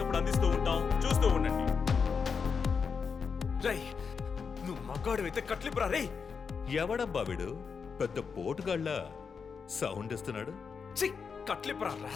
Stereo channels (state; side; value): quieter; right; 5.8 dB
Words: అందిస్తూ ఉంటాం, చూస్తూ ఉండండి. రై, నువ్వు మగాడు అయితే కట్లిపురా. రే, ఎవడబ్బా వీడు? పెద్ద పోటుగాళ్ళ సౌండ్ ఇస్తున్నాడు. చి, కట్లిపురా